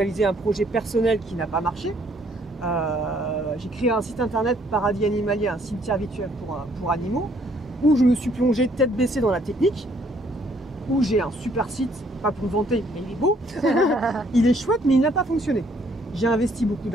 un projet personnel qui n'a pas marché. J'ai créé un site internet Paradis Animalier, un cimetière virtuel pour animaux, où je me suis plongé tête baissée dans la technique, où j'ai un super site, pas pour vanter, mais il est beau, il est chouette, mais il n'a pas fonctionné. J'ai investi beaucoup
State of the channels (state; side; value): normal; both; correlation 0.65